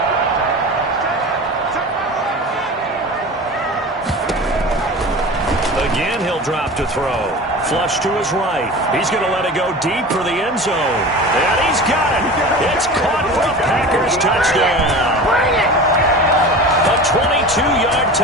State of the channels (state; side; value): normal; both; correlation 0.34